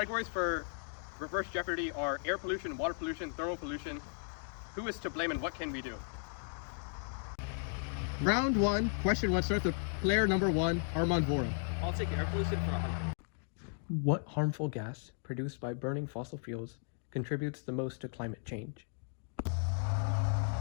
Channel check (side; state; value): right; silent; 54 dB below the other